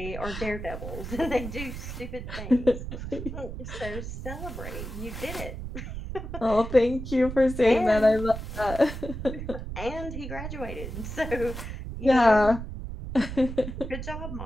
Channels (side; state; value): right; noise; rumble, 7 dB below the sound